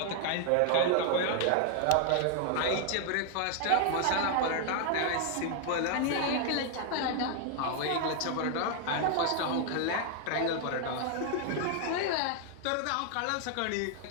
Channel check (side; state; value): both; different; correlation 0.00